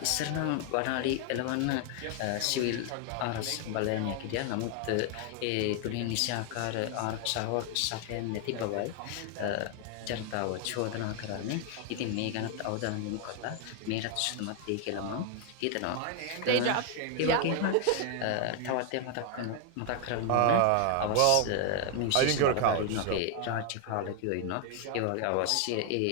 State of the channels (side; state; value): both; different; correlation 0.00